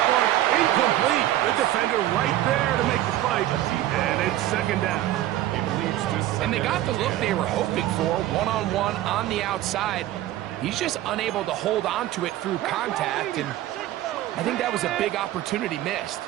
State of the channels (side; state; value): left; quieter; 14.1 dB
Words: one incomplete. The defender right there to make the fight. And it's 2nd down. It leads to And they got the look they were hoping for, one-on-one on the outside. He's just unable to hold on to it through contact, and I think that was a big opportunity missed.